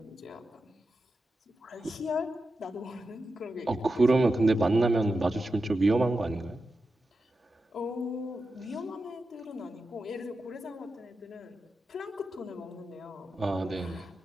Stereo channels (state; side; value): normal; both; correlation 0.90